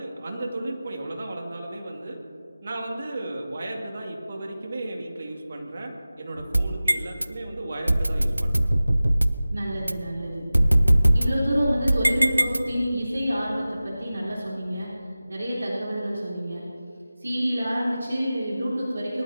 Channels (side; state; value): both; inverted; correlation -0.97